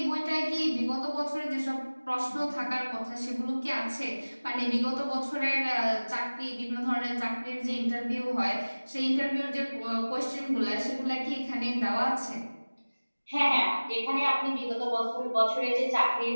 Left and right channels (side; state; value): both; inverted; correlation -1.00